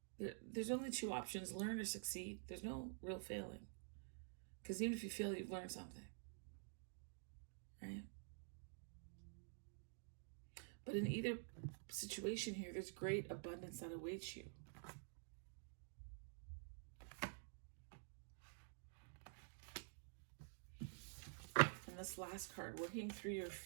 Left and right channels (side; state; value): left; silent; digital silence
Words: there's only two options: learn or succeed. There's no real failing. Because even if you fail, you've learned something, right? But in either situation here, there's great abundance that awaits you. And this last card, working through your